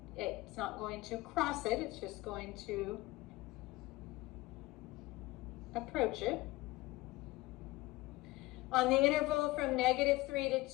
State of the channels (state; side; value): quieter; right; 19.9 dB